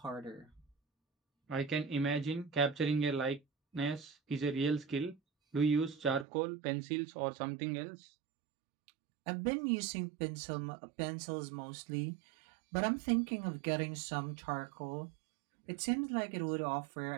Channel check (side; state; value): left; drops out; at 6.2 s